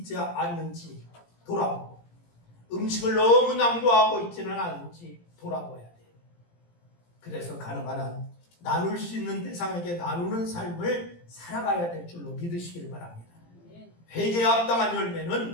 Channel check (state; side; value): late; right; 17 ms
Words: 않는지 돌아보고 음식을 너무 낭비하고 있지는 않은지 돌아봐야 돼요. 그래서 가능한 한 나눌 수 있는 대상에게 나누는 삶을 살아가야 될 줄로 믿으시기를 바랍니다. 회개에 합당한